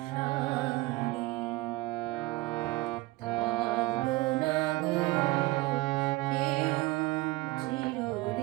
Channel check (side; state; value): left; quieter; 20.4 dB